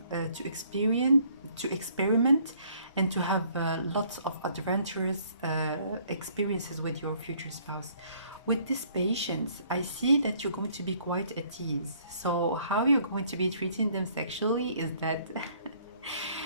to experiment and to have lots of adventurous experiences with your future spouse. With this patience, I see that you're going to be quite at ease. So how you're going to be treating them sexually is that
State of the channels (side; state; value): both; inverted; correlation -0.62